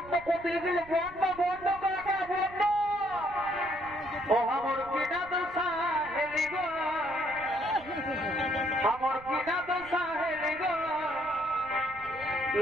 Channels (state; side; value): noise; right; rumble, 20 dB below the sound